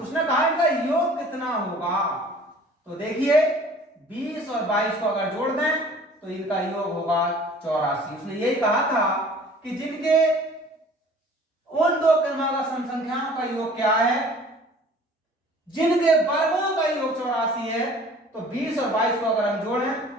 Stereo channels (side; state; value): both; normal; correlation 0.49